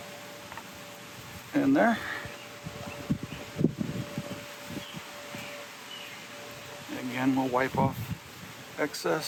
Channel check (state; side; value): identical; both; correlation 1.00